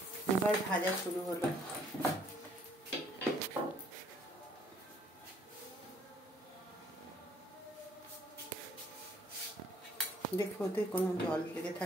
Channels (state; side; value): normal; both; correlation 0.62